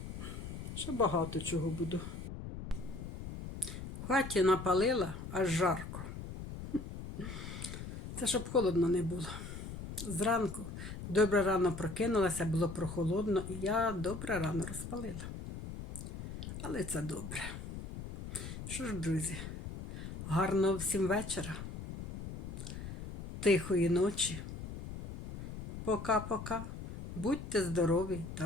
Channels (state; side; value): noise; left; rumble, 9 dB below the sound